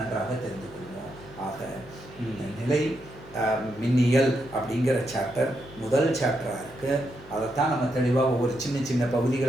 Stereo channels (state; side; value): noise; left; hum, 21 dB below the sound